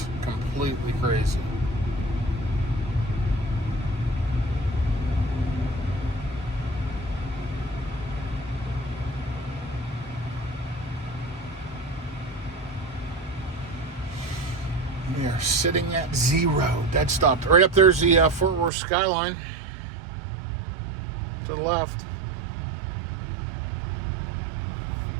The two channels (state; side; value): drops out; left; at 18.7 s